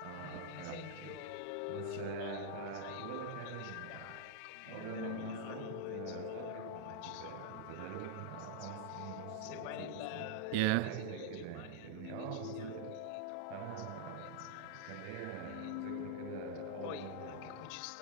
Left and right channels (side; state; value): both; different; correlation -0.01